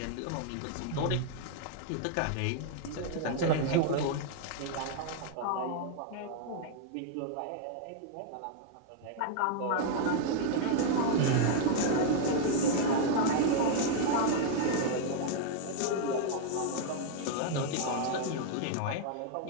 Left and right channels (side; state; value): both; different; correlation -0.01